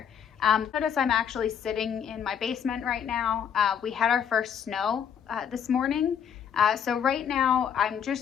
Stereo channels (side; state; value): right; quieter; 8.0 dB